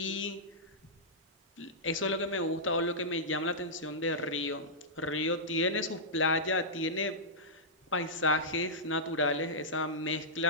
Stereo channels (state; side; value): normal; both; correlation -0.12